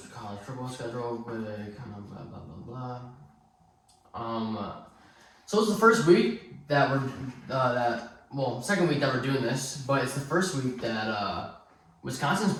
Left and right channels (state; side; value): identical; both; correlation 1.00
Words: college football schedule with kind of blah blah blah blah. So it's the first week that we're second week that we're doing this, but it's the first week that Wisconsin's